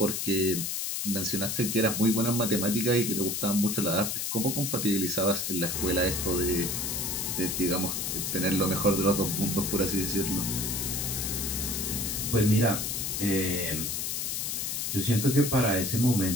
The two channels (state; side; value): noise; left; hiss, 2 dB below the sound